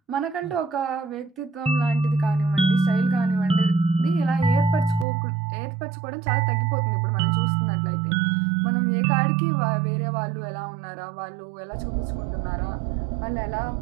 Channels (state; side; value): drops out; left; at 5.1 s